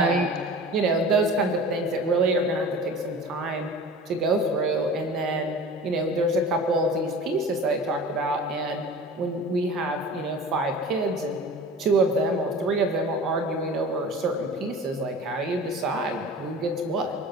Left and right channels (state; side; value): normal; both; correlation 0.39